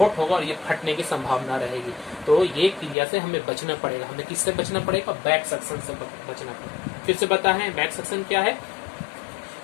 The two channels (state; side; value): drops out; right; at 3.0 s